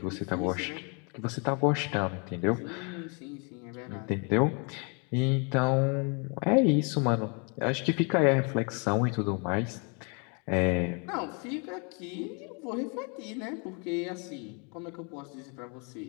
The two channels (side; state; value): right; quieter; 35.4 dB